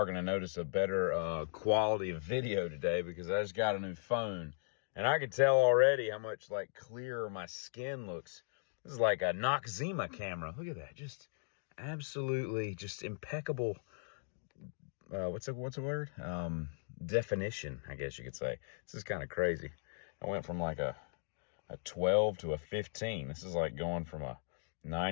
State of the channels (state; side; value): silent; right; digital silence